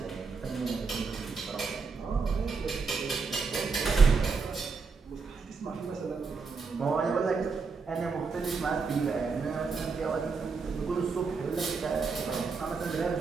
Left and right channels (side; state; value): left; quieter; 4.8 dB